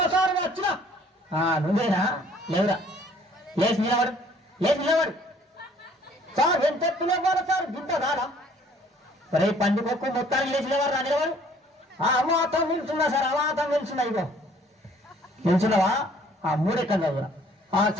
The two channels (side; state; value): both; normal; correlation 0.58